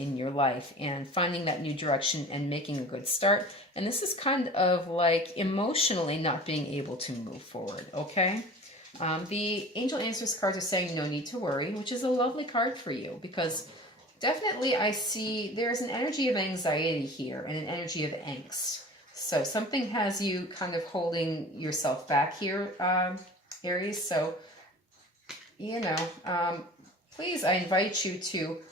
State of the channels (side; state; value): both; normal; correlation 0.41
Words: your life and finding that new direction and making a good start. And this is kind of like emotionally not being able to move forward. Okay. The Angel Answers cards are saying no need to worry, which is a lovely card for you because definitely I see there's an energy of anxiety here and an energy of angst. So something has you kind of holding yourself back here, Aries. So, you know, please, I invite you to